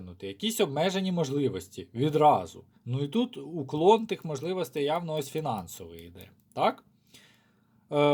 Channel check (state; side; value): identical; both; correlation 1.00